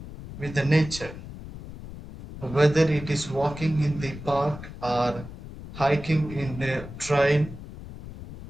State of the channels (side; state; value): left; noise; rumble, 13 dB below the sound